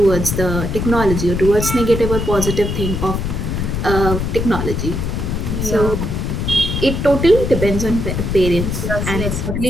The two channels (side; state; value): left; noise; rumble, 2 dB below the sound